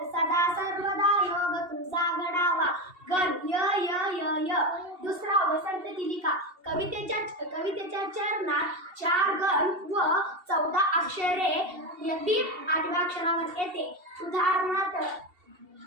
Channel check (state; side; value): late; left; 2.7 ms